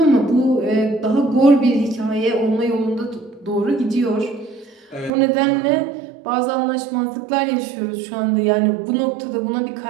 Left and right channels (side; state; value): left; drops out; at 5.1 s